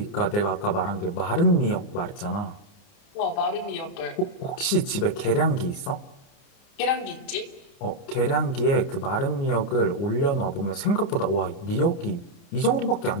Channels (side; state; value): right; late; 30 ms